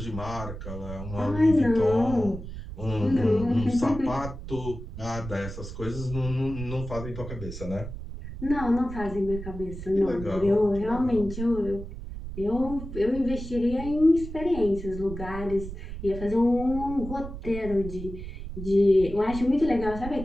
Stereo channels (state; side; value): noise; right; rumble, 9 dB below the sound